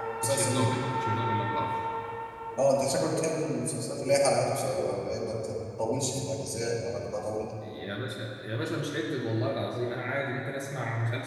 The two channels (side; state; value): both; identical; correlation 1.00